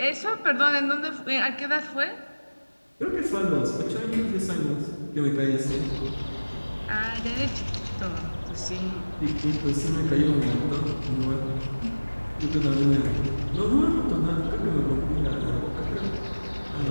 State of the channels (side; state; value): both; inverted; correlation -1.00